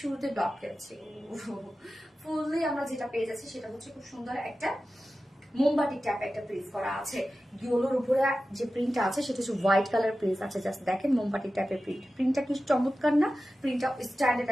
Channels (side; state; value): both; normal; correlation 0.94